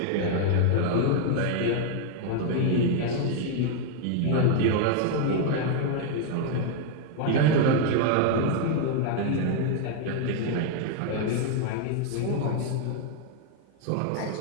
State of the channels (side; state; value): both; different; correlation 0.00